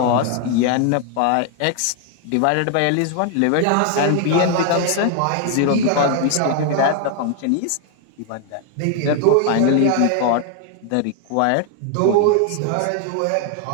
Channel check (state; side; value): different; both; correlation 0.00